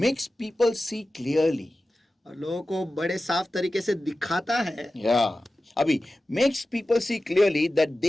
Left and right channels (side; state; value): both; normal; correlation 0.95